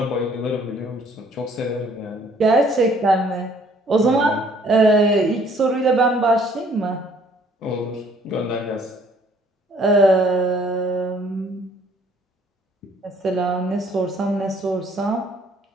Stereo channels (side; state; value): both; normal; correlation 0.60